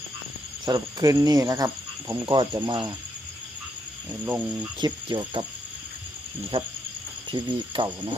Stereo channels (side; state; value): both; normal; correlation 0.77